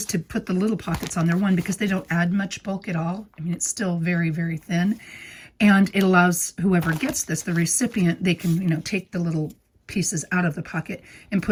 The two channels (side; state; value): both; identical; correlation 1.00